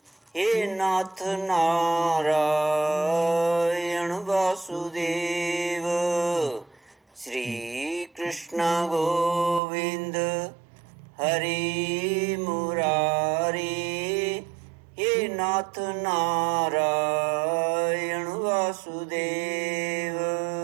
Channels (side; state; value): left; drops out; at 9.6 s